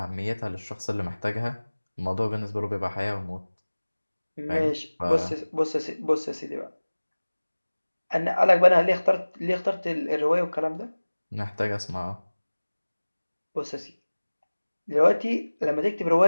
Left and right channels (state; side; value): inverted; both; correlation -1.00